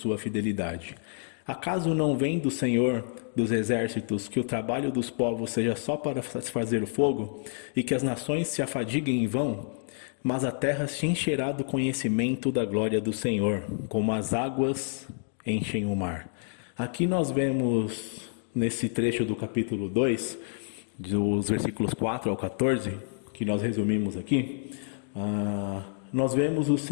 fidelidade. Acaso não vem do Senhor dos exércitos que o trabalho dos povos seja só para satisfazer o fogo, e que as nações se afadiguem em vão? Mas a terra se encherá do conhecimento da glória do Senhor, como as águas enchem o mar. Aqui nós vemos, nesse trecho do capítulo 2, dos versículos 4 ao 14, que nós resumimos aqui, nós vemos o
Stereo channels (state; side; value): silent; right; digital silence